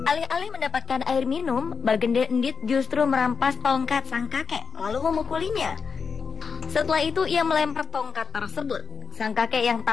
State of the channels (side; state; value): right; quieter; 5.5 dB